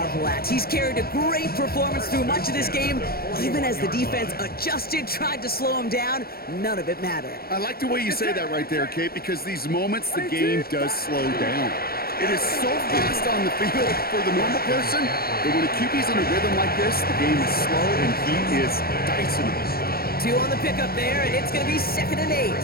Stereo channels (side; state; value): right; late; 0.44 ms